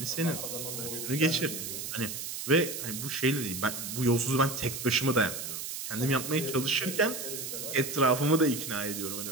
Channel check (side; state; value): right; noise; hiss, 6 dB below the sound